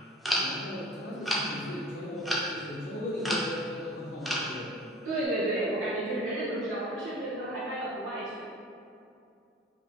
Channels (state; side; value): normal; both; correlation 0.41